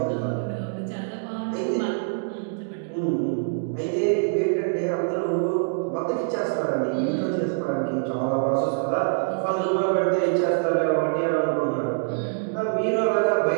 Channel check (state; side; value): silent; left; digital silence